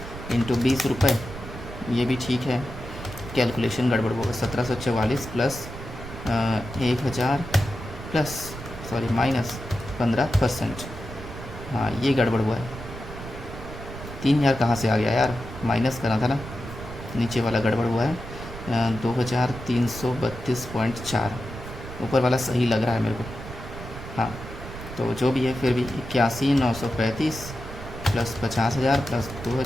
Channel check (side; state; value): right; noise; rumble, 11 dB below the sound